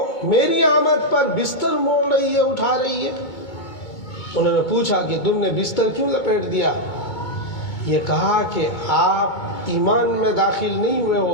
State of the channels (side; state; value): right; late; 2.2 ms